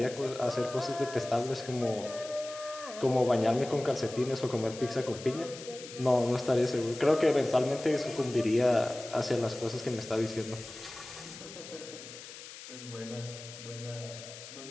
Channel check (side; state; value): left; noise; hiss, 14 dB below the sound